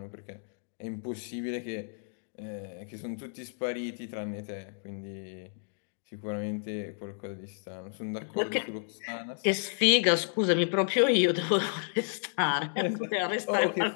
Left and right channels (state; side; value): silent; right; digital silence